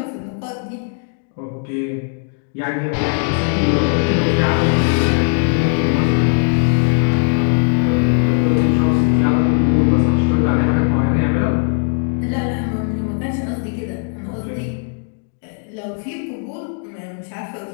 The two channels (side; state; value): right; silent; 56 dB below the other